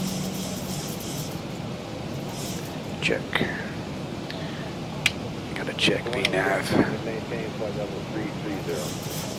Check. Got to check VNAV. maintain flight level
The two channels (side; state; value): both; identical; correlation 1.00